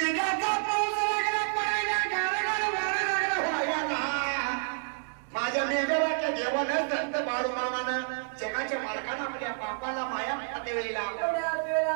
पाऊस लागला पडायला गारगार वारा लागला व्हायला माझ्या मेघराच्या देवानं संत बाळू मामानं जगाच्या मालकाला आपल्या बापाला माया पते वेळेला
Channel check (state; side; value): silent; left; digital silence